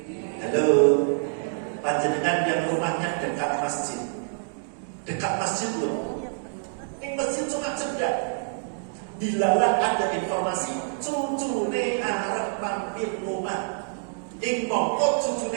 Halo, panjenengan yang rumahnya dekat masjid loh. Ini masjid cuma cedak. Dilalah ada informasi cucune arep mampir rumah. Ing mongko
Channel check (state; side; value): silent; left; digital silence